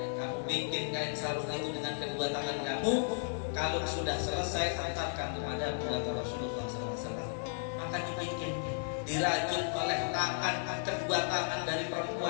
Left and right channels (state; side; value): silent; right; digital silence